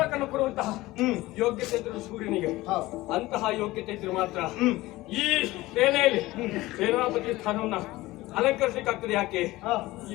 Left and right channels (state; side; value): quieter; right; 18.6 dB